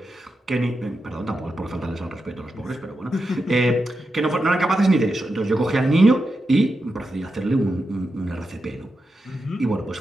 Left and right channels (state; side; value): normal; both; correlation 0.88